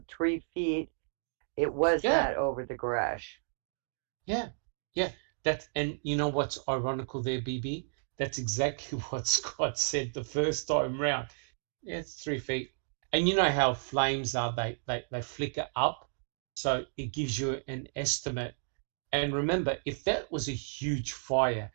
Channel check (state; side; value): silent; left; digital silence